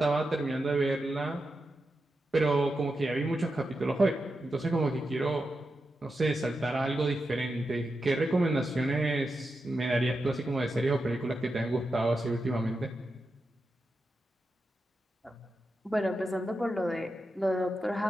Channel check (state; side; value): normal; both; correlation 0.89